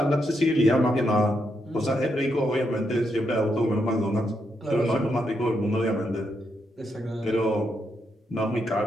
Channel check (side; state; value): both; normal; correlation 0.80